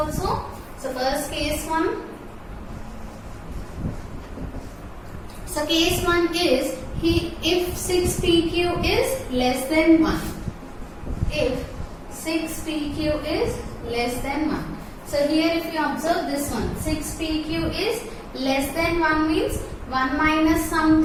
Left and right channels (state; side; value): identical; both; correlation 1.00